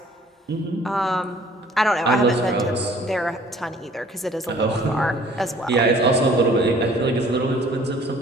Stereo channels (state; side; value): normal; both; correlation 0.54